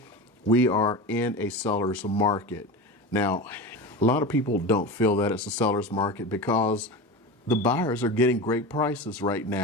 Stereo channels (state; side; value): normal; both; correlation 0.27